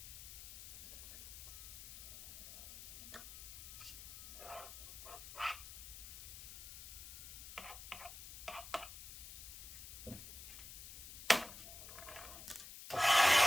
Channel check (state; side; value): noise; left; hiss, 11 dB below the sound